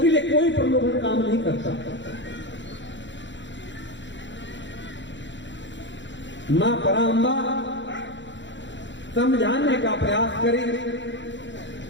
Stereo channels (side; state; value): right; late; 0.53 ms